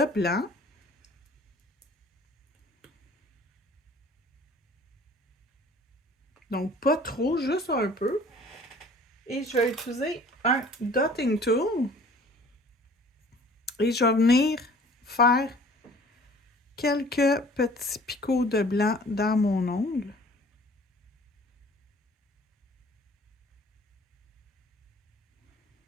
blanc. Donc, pas trop, juste un peu. Et je vais utiliser un dotting tool. Et je vais venir faire quelques petits picots de blanc dans mon ongle.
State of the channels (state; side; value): normal; both; correlation 0.50